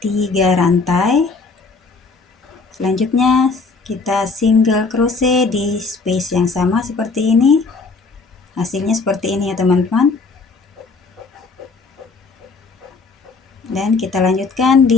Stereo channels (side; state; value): right; quieter; 4.2 dB